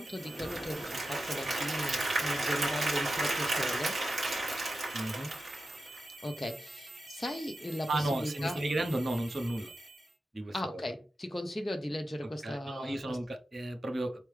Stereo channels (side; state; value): both; normal; correlation 0.92